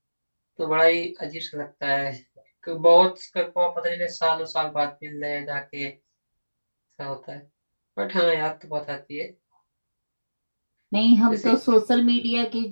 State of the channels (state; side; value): inverted; both; correlation -1.00